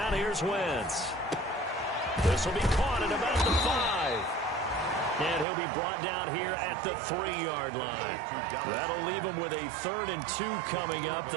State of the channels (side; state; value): left; drops out; at 5.5 s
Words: here's Wentz. This will be caught at about the 5. And he'll be brought down here at the 3-yard line. That'll leave him with a 3rd and 2 coming up.